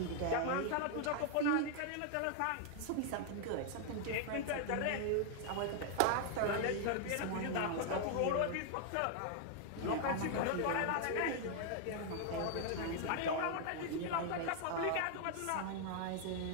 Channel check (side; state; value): both; different; correlation 0.00